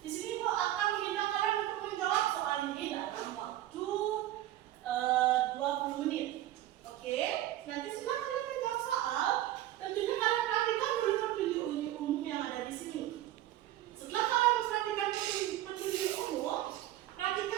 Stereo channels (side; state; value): left; quieter; 14.1 dB